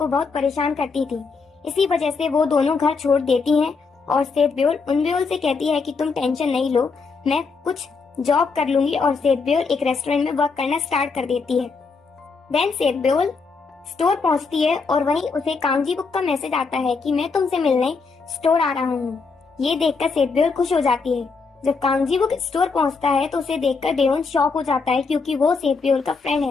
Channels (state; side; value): quieter; right; 4.7 dB